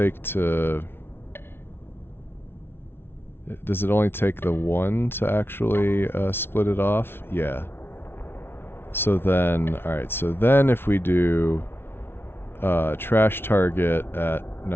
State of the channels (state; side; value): late; right; 0.11 ms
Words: to? Does it only take the one to actually split it off? Yeah. So then, all right. So then, if we do trash target at